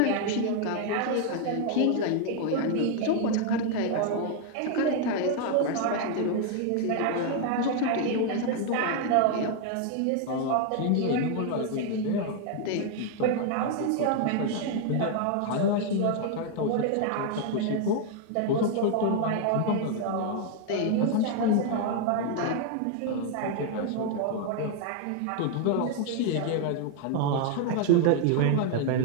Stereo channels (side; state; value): both; different; correlation 0.00